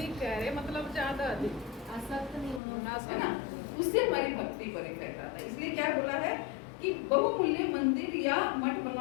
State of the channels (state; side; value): drops out; right; at 2.6 s